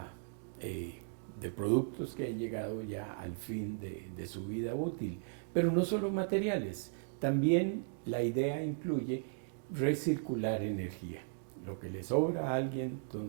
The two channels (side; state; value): left; silent; digital silence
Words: de productos que han llegado ya al fin de su vida útil. Pero no solo materiales, también la idea incluye recircular energía. Lo que le sobra a alguien,